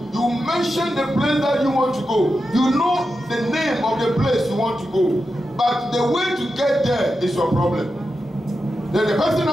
You mention the place that you want to go. You know the name of the place you want to go. But the way to get there is your problem. Then the person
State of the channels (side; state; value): both; normal; correlation 0.89